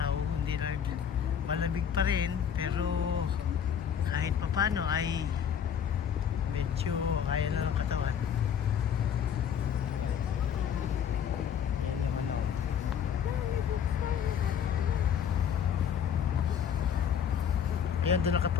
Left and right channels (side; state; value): right; quieter; 8.2 dB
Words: hindi na malamig pa rin, pero kahit papano ay medyo kaya na ng katawan. Yan yung ano. Ayan, doon